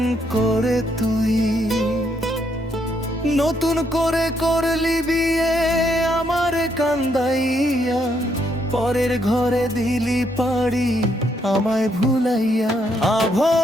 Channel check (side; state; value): both; normal; correlation 0.74